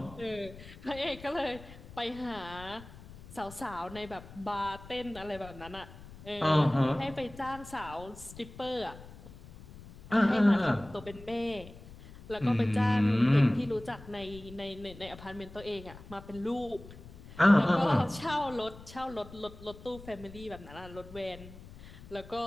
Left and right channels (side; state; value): left; noise; rumble, 17 dB below the sound